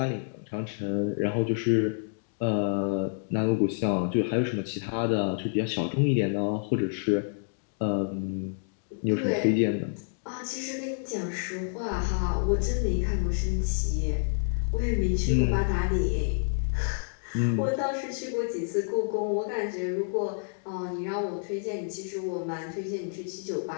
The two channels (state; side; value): silent; right; digital silence